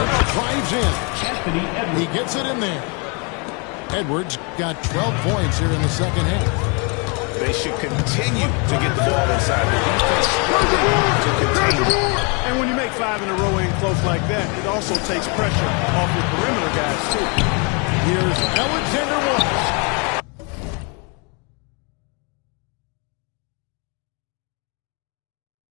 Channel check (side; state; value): right; quieter; 33.8 dB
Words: drives in. He gets it in there. Edwards got 12 points here in the second half. They should continue to get the ball inside the defense to continue. And when you make 5 in a row in close like that, it also takes pressure off your perimeter guys, too. Here's Alexander Walker.